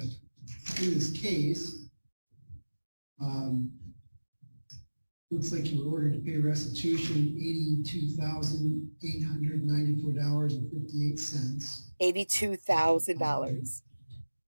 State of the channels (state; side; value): inverted; both; correlation -1.00